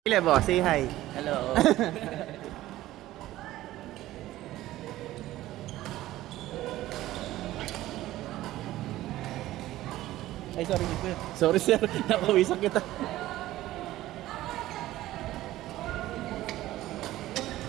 Lebo, say hi. Hello. Ay, sorry, sir. Sorry, sir. Napawisan kita.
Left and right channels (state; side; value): quieter; left; 15.4 dB